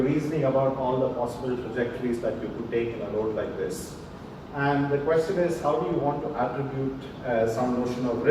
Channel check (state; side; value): identical; both; correlation 1.00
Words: reasoning about all the possible trajectories that you could take in a road like this. And the question is, how do you want to attribute some notion of